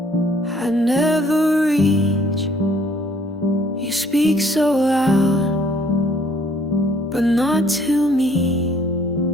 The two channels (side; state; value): both; normal; correlation 0.61